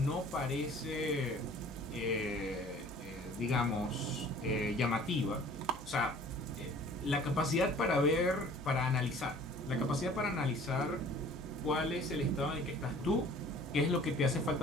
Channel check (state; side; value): noise; left; hum, 24 dB below the sound